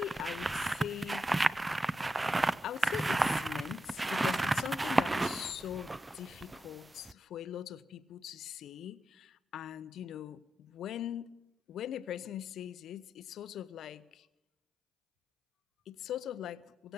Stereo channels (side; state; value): both; normal; correlation 0.87